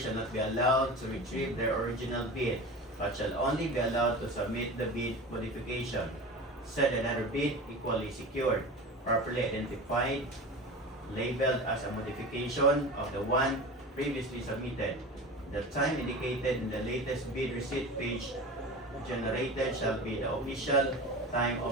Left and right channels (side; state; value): both; normal; correlation 0.32